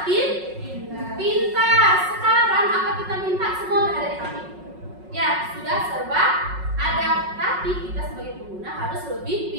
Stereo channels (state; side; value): late; left; 5.4 ms